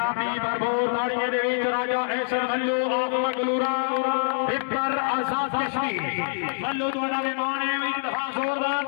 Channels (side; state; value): right; silent; digital silence